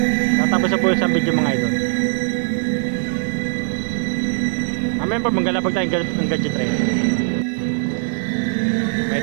Tatapos na po isang video mga idol. Mamaya pa manggalapag tayo ng gadget rin.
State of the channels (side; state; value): left; silent; digital silence